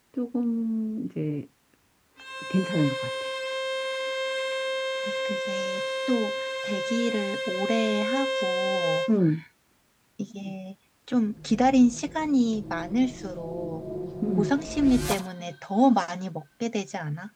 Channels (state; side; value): identical; both; correlation 1.00